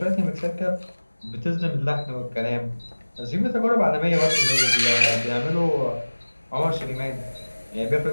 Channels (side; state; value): both; inverted; correlation -1.00